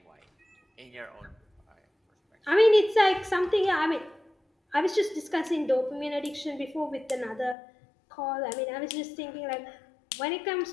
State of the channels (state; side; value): drops out; right; at 7.6 s